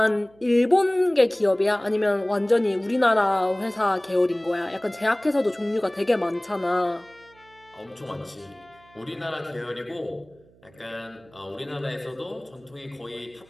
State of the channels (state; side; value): noise; right; hum, 28 dB below the sound